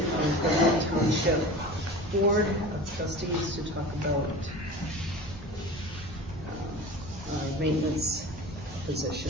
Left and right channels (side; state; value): both; normal; correlation 0.36